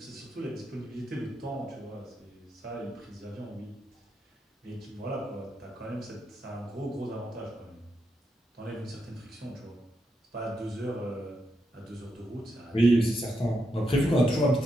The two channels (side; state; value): both; normal; correlation 0.83